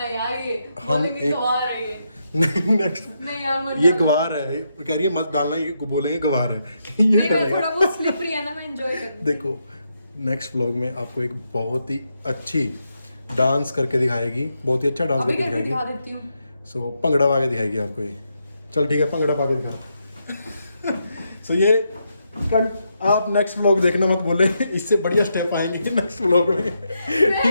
हम एक नेक्स्ट ये गवार है, कह रही है मत डालना, ये बोलेंगे गवार है। ये थोड़ा बहुत स्लिपरी है ना, मैं एंजॉय कर। देखो नेक्स्ट व्लॉग में आपको एक बहुत ही अच्छी डांस करके दिखाएगी, बहुत ही अच्छा डांस अभी करके करके दिखा दिखाएगी। देती हूँ। सो भंगड़ा पा के दिखाएगी आपको ये। चल ठीक है, भंगड़ा पा के दिखा। सो ये आप नेक्स्ट व्लॉग देखना मत बोले, इससे बढ़िया स्टेप आएंगे नेक्स्ट व्लॉग में।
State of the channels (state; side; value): inverted; both; correlation -0.82